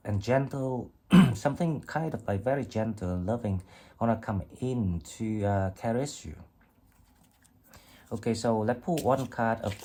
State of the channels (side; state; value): both; identical; correlation 1.00